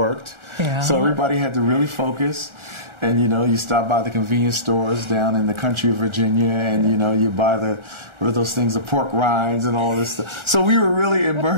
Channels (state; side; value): late; left; 1.4 ms